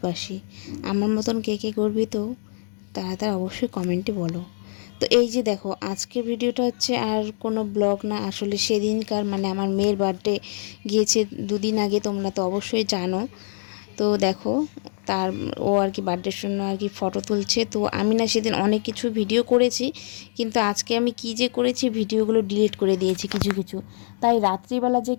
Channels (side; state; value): right; silent; 57 dB below the other